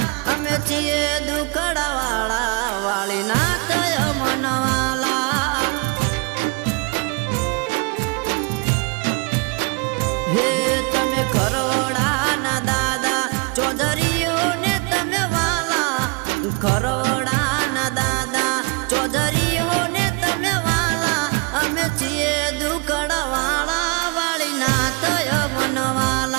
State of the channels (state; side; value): quieter; left; 31.6 dB